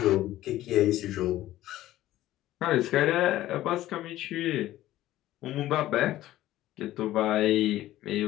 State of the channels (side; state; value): right; quieter; 14.8 dB